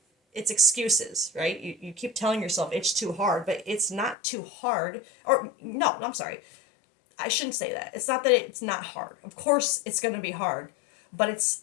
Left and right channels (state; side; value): drops out; right; at 4.2 s